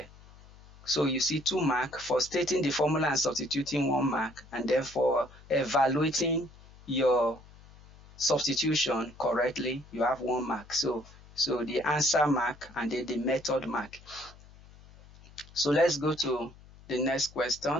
So you see 2 mark for stating the formula and substituting 1 mark, and then for evaluating your substitution correctly, you have 1 mark. So the answer mark and then the method mark. So let's go to the next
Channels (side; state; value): left; noise; hum, 22 dB below the sound